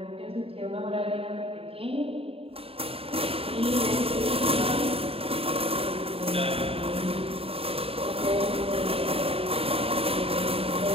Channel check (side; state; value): left; late; 0.28 ms